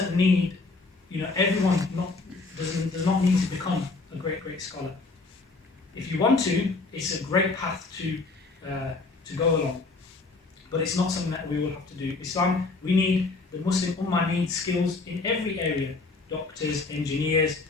need, everyone does not need to become a great, great scholar. If you want to, it's a great path to go along. But it's not something that we will have to do. Islam, the Muslim Ummah needs skills in every area. Doctors, engineers,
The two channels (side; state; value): right; quieter; 3.7 dB